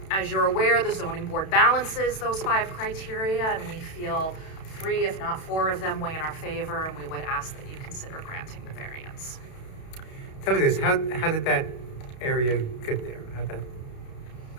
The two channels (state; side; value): late; right; 32 ms